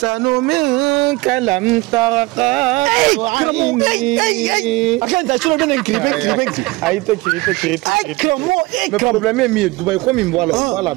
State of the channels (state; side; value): quieter; left; 22.2 dB